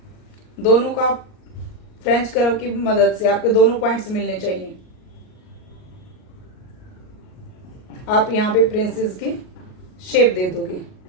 दोनों का आप फ्रेंच कर्व की मदद से आपके दोनों पॉइंट्स मिलने चाहिए। आप यहां पे प्रिंसेस की शेप दे दोगे।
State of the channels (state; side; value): late; right; 38 ms